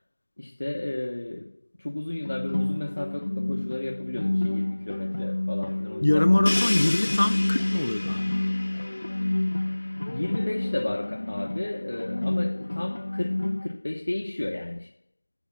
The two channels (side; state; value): both; inverted; correlation -1.00